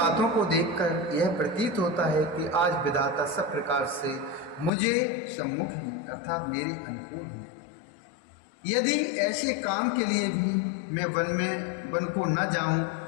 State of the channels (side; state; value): right; drops out; at 4.7 s